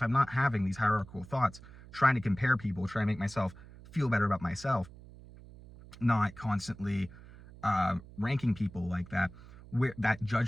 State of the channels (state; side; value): noise; right; hum, 19 dB below the sound